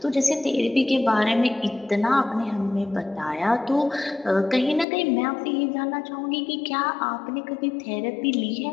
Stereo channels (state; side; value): drops out; right; at 4.9 s